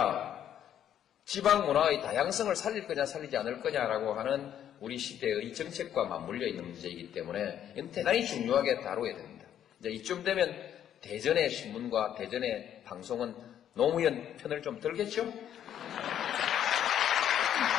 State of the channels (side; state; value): right; quieter; 10.2 dB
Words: 지방 문화의 다양성을 살릴 거냐 살리지 않을 거냐라고 하는 우리 시대의 정책과 맞물려 있는 문제이기 때문에 이건 대단히 중요하게 다뤄야 됩니다. 이제 이쯤 되면 대전의 신문과 대전의 방송은 노무현 편을 좀 들겠죠?